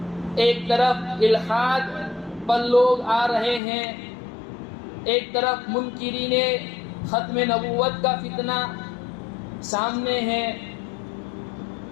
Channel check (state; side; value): drops out; right; at 3.6 s